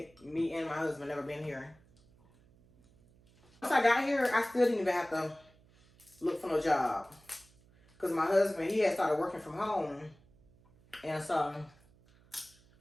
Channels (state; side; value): noise; right; hum, 29 dB below the sound